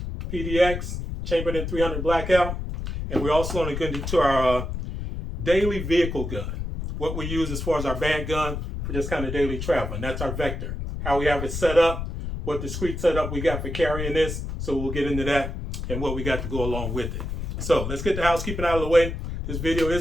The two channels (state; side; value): noise; left; rumble, 5 dB below the sound